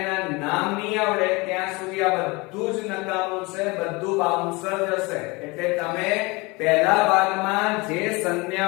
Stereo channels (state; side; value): quieter; right; 25.2 dB